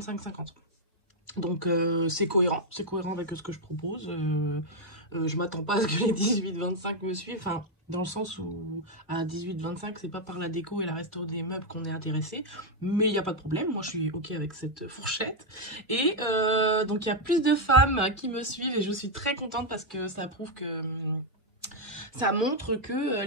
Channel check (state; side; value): normal; both; correlation 0.01